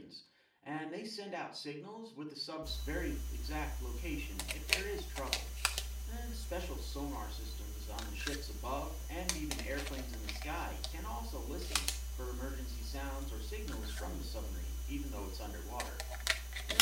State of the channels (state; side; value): identical; both; correlation 1.00